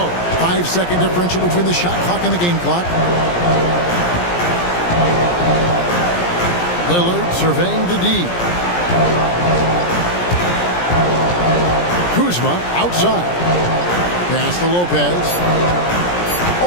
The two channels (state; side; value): late; right; 17 ms